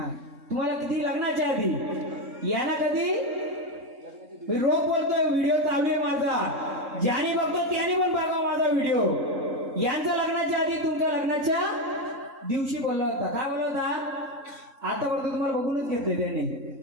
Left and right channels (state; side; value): late; left; 3.6 ms